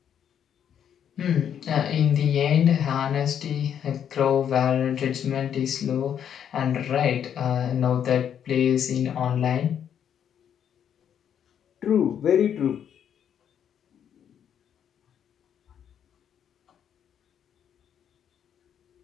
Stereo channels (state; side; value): quieter; right; 8.9 dB